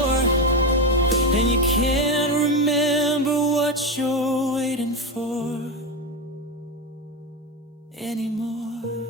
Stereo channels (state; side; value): normal; both; correlation 0.15